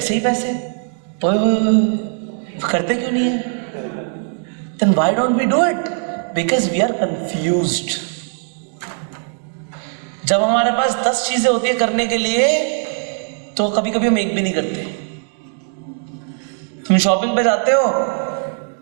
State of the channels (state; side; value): silent; left; 56 dB below the other